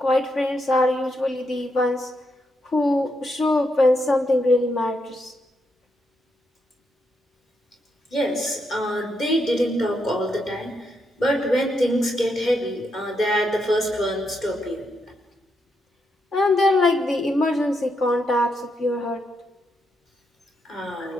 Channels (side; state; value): both; normal; correlation 0.80